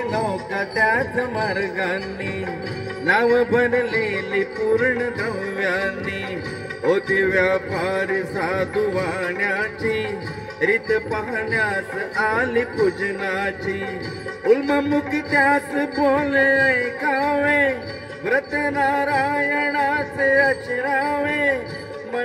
नौका त्याच मार्गांनी नाव भरलेली पूर्ण द्रव्यांनी होती व्यापारी साधू वाण्याची रीत पाहण्यास आली पूजनाची उल्ममुख त्यास बोले ऐकावे व्रत नारायणाचे अचरावे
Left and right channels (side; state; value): both; identical; correlation 1.00